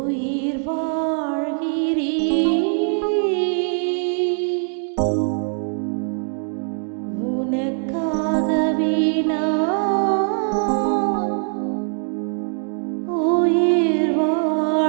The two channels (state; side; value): silent; left; 57 dB below the other